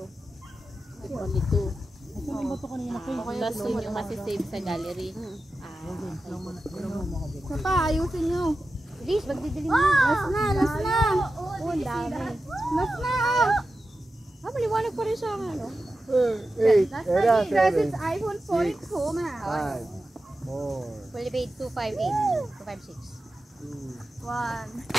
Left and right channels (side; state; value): both; normal; correlation 0.92